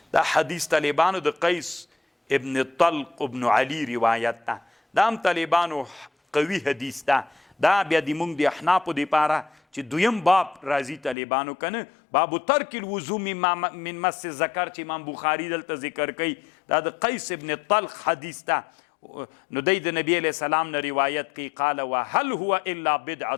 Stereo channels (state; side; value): drops out; right; at 11.2 s